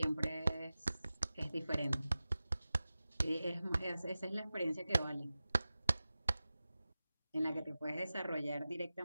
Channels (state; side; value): inverted; both; correlation -0.95